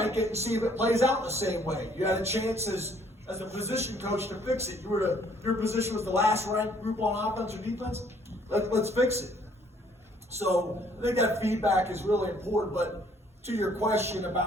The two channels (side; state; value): both; normal; correlation 0.62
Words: it and see if it plays out the same way. You had a chance as a position coach to fix it. Your position was the last ranked group on offense or defense. Let's fix it. So I think that feedback is really important. But to your question